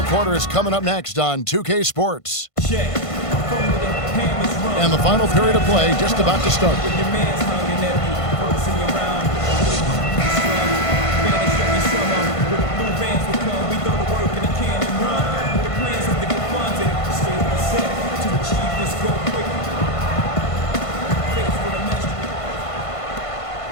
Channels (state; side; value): late; right; 1.5 ms